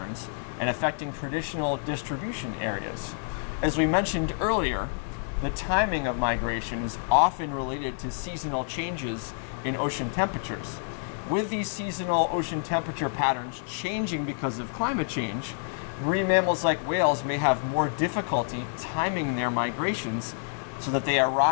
and affecting traditional distribution areas. As we mentioned earlier, the timing of migration is often related to seasonal changes in ocean temperatures. With these seasonal ocean temperature patterns changing because of climate change, marine mammals like whales may have more difficulty timing their migrations so that they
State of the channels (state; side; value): silent; right; 59 dB below the other